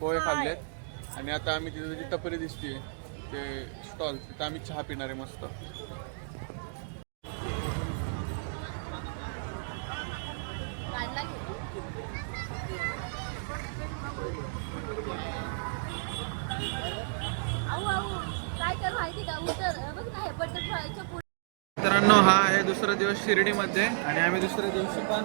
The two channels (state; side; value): silent; left; digital silence